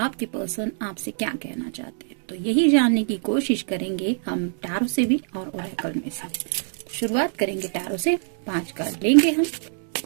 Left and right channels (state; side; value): silent; left; digital silence